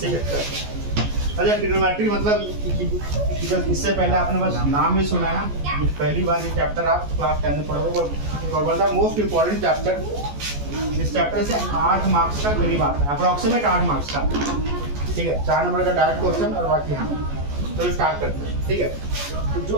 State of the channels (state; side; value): late; left; 14 ms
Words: अच्छा ट्रिग्नोमेट्री मतलब इससे पहले आपने बस नाम ही सुना है, पहली बार ये चैप्टर आप क्लास 10 में पढ़ोगे और one of the most important chapter. इस चैप्टर से 8 मार्क्स का करीब आता है, अप्रोक्सीमेट 8 मार्क्स का। ठीक है, 4 नंबर का डायरेक्ट क्वेश्चन और बाकी हाँ। तो स्टार्ट करते हैं। ठीक है, तो जो